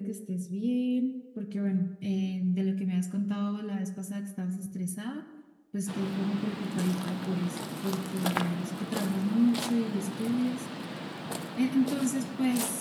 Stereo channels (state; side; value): identical; both; correlation 1.00